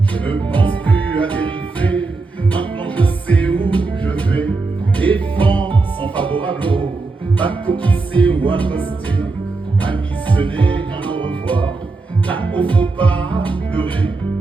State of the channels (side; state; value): left; quieter; 3.7 dB